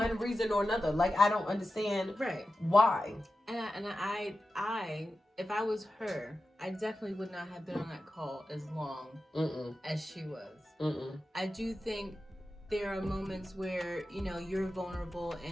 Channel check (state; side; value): normal; both; correlation 0.92